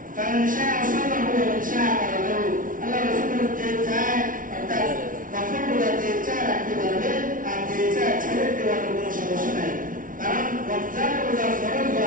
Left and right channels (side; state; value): left; late; 0.39 ms